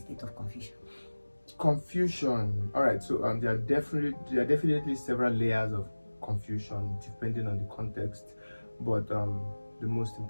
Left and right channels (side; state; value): both; inverted; correlation -1.00